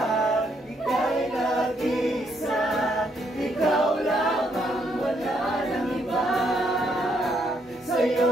ika'y nag-isa, ikaw lamang, wala nang iba.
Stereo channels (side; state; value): both; normal; correlation 0.73